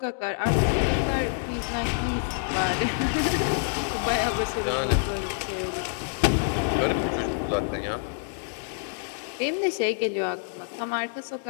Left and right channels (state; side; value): silent; right; digital silence